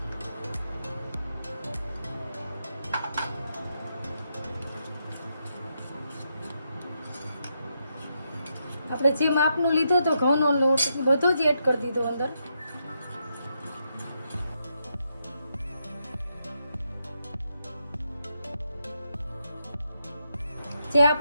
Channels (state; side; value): inverted; both; correlation -0.81